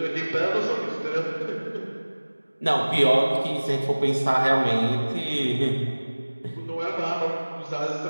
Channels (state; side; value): inverted; both; correlation -1.00